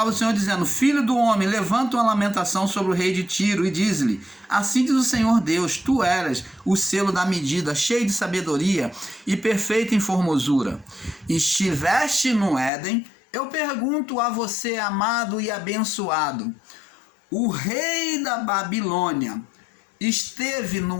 do Senhor dizendo: filho do homem, levanta uma lamentação sobre o rei de Tiro e diz-lhe: assim diz o Senhor Deus, tu eras o selo da medida, cheio de sabedoria e perfeito em formosura. Estiveste no Éden. Eu pergunto a você, amado e abençoado: o rei da Babilônia esteve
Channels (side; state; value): right; drops out; at 12.7 s